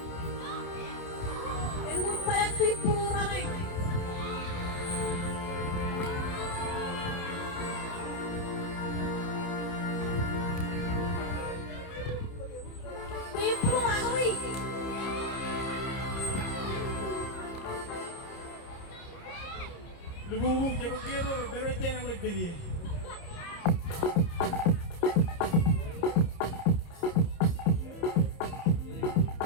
And huwag pa yung people running. People running. Lumubog siya magkiro, pero dyan ang magbili. Walk,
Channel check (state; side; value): late; right; 29 ms